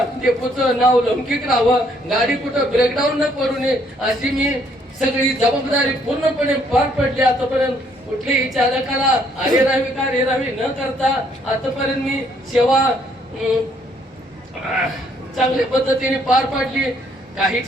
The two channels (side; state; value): both; normal; correlation 0.67